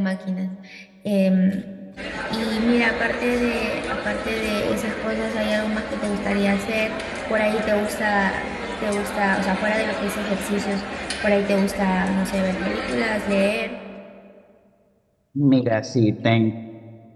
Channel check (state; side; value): identical; both; correlation 1.00